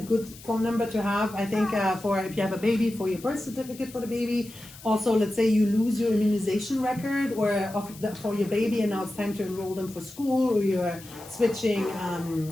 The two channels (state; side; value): noise; left; hiss, 19 dB below the sound